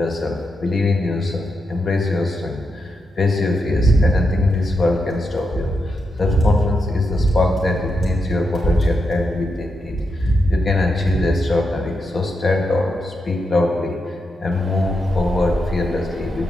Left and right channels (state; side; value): normal; both; correlation 0.85